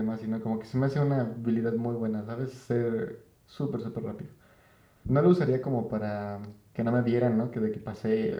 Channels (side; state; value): both; identical; correlation 1.00